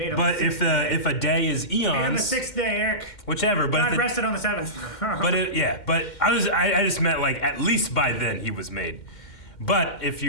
if a day is eons, made on the 6th day, Eric. Whichever. But God rested on the 7th. But I just meant like at least by then he was made. But if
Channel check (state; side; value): late; right; 2.1 ms